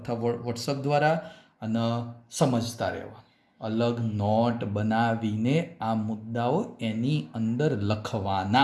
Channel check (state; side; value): identical; both; correlation 1.00